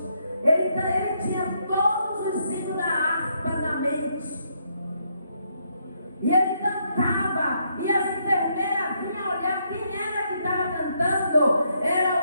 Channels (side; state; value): both; inverted; correlation -0.75